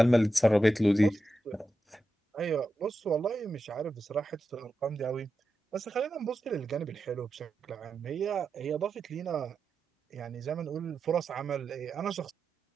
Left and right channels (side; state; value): both; normal; correlation 0.90